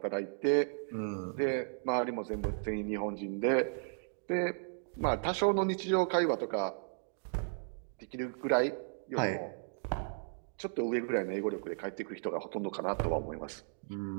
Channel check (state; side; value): silent; left; digital silence